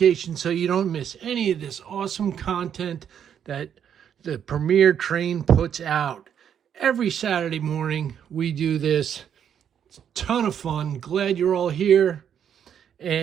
so you don't miss any of this awesome content that the Premier Train puts out. Every Saturday morning, we do this. It's a ton of fun. Glad you're all here.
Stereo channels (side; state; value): left; quieter; 8.7 dB